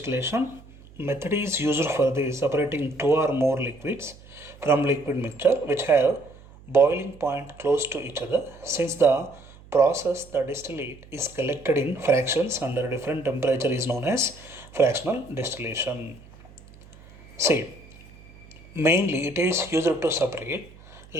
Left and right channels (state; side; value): noise; right; hum, 22 dB below the sound